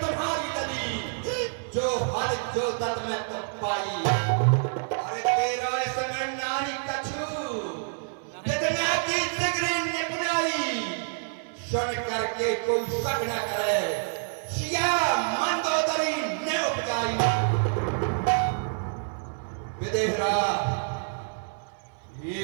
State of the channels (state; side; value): silent; left; 59 dB below the other